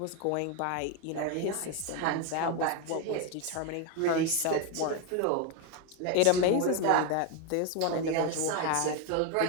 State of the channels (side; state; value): both; different; correlation 0.02